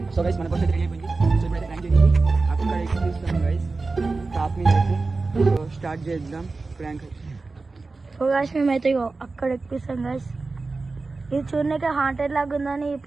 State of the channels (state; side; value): quieter; left; 3.8 dB